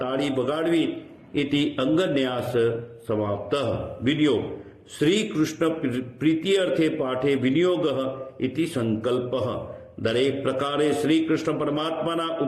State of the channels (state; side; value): identical; both; correlation 1.00